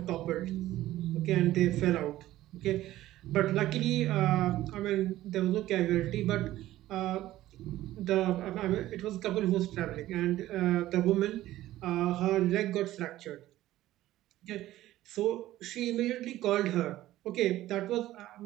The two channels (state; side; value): quieter; left; 15.0 dB